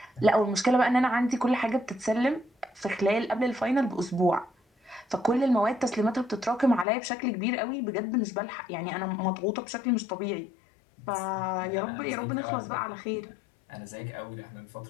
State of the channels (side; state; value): right; drops out; at 6.9 s